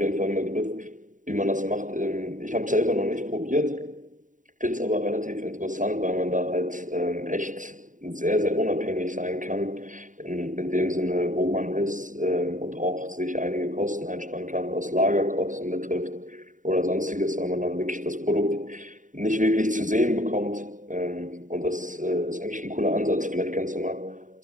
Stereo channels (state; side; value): late; left; 0.37 ms